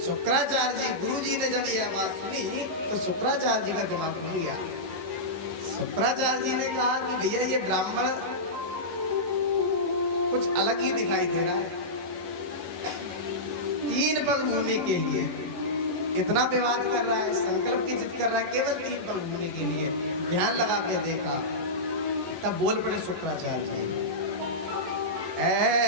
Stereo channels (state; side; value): late; left; 11 ms